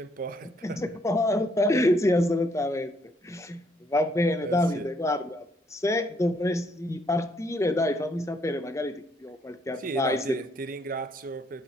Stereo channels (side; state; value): both; normal; correlation 0.70